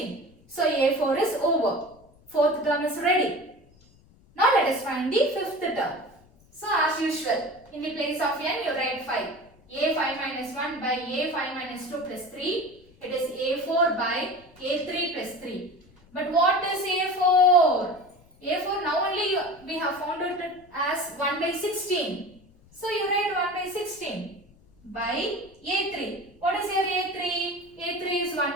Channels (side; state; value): left; noise; rumble, 28 dB below the sound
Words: So A4 is over. Fourth term is ready. Now let us find the fifth term. So as usual, in the place of n you write 5. A5 minus 1 by A5 minus 2 plus 3. It is A4 by A3 plus 3. But what is A4? A4 now only we have found it as 1 by 16. So you write 1 by 16 by A3. What is your A3? A3 is